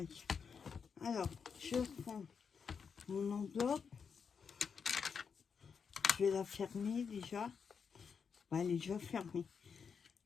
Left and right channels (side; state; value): right; quieter; 6.2 dB